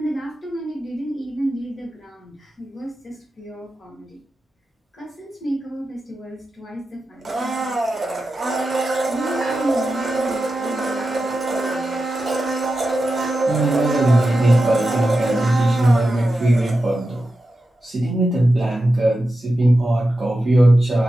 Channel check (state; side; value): normal; both; correlation 0.91